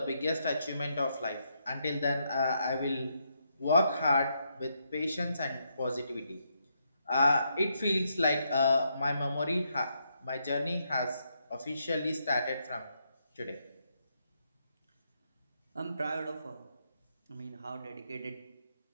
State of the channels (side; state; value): both; inverted; correlation -0.79